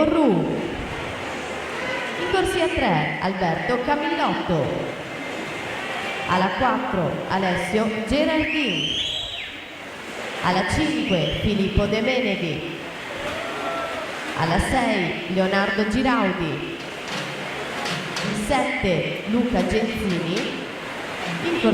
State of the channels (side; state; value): both; identical; correlation 1.00